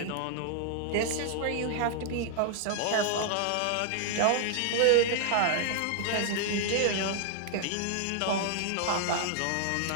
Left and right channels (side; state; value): both; different; correlation 0.00